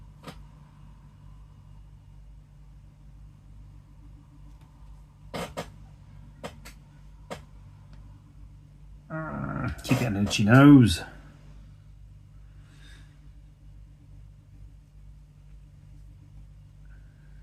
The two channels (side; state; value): both; identical; correlation 1.00